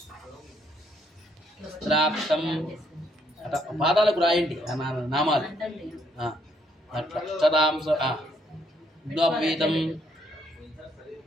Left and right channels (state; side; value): normal; both; correlation 0.70